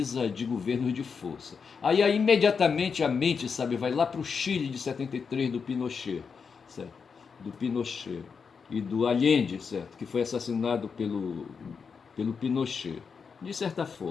de governos de força. Aí imediatamente a mente, sabe, vai lá para o Chile de 73 do Pinochet, certo? Do Pinochet e do Allende, certo? Que foi assassinado pelo Pinochet, de certa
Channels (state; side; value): quieter; right; 5.8 dB